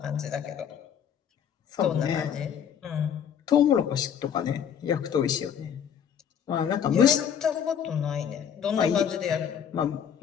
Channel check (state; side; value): quieter; right; 8.3 dB